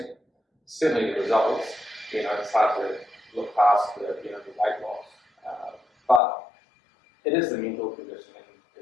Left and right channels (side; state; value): right; drops out; at 6.2 s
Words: certainly the results. It's hard to look past the weight loss, but it is the mental conditioning